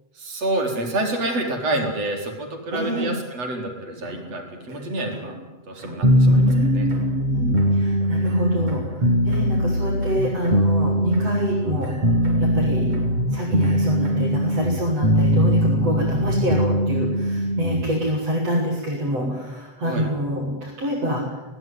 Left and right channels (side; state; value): left; late; 7.9 ms